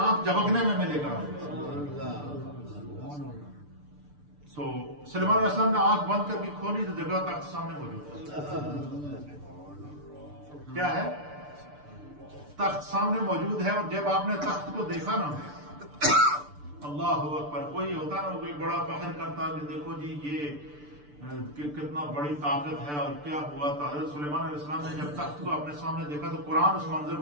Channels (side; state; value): left; late; 6.8 ms